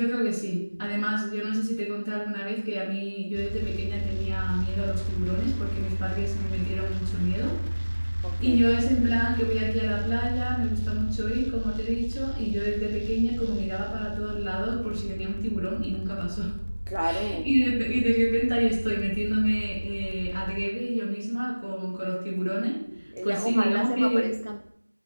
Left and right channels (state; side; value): inverted; both; correlation -1.00